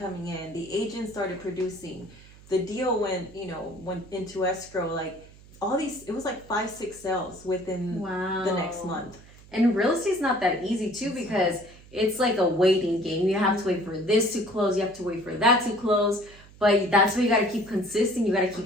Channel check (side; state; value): right; noise; hum, 22 dB below the sound